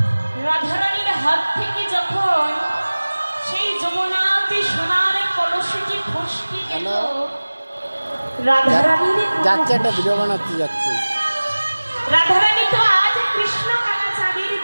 হাত থেকে যখন সেই যমুনাতে সোনার কলসিটি ফসকে গেল, রাধারানীর যাচ্ছে একটা ভিডিও বানাতে যাচ্ছে। রাধারানী তো আজ কৃষ্ণ কালা চাঁদের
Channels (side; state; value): both; inverted; correlation -1.00